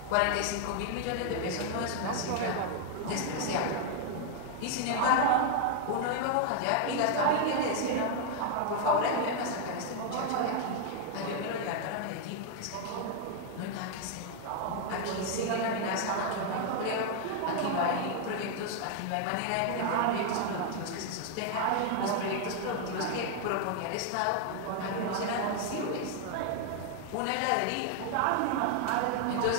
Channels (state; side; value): different; both; correlation 0.00